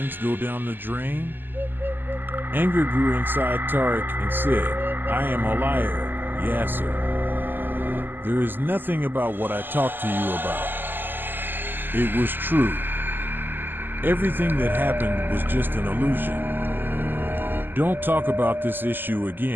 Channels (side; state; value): left; late; 0.092 ms